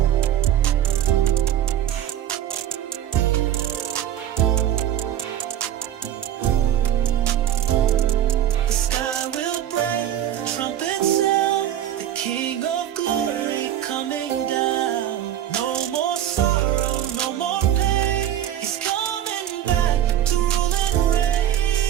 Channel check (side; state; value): left; quieter; 11.3 dB